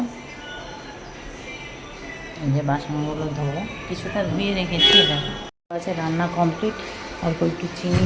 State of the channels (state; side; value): identical; both; correlation 1.00